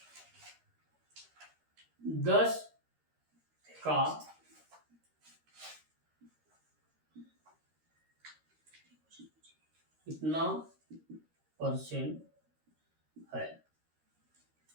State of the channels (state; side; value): late; left; 13 ms